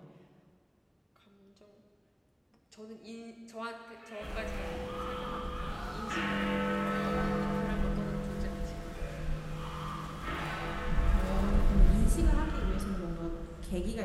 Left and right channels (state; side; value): identical; both; correlation 1.00